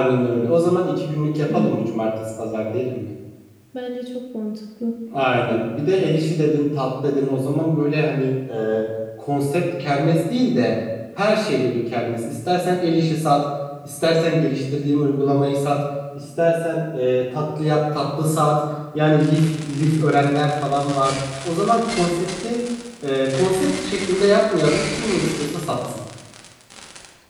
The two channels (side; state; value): both; identical; correlation 1.00